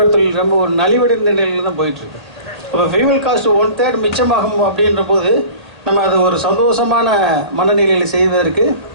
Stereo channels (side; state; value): left; late; 1.8 ms